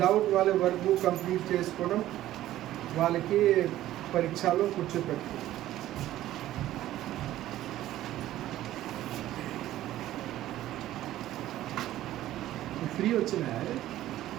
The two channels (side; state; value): left; quieter; 14.0 dB